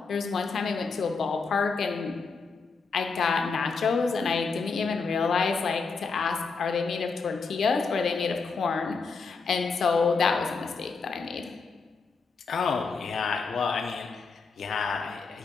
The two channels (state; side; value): quieter; right; 4.7 dB